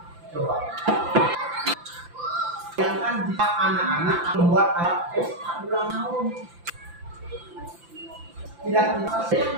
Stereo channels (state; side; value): late; left; 5.9 ms